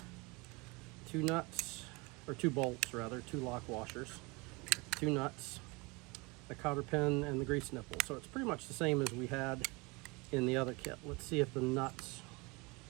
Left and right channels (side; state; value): left; quieter; 26.5 dB